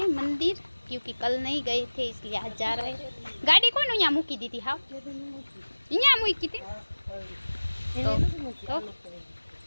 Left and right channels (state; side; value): inverted; both; correlation -1.00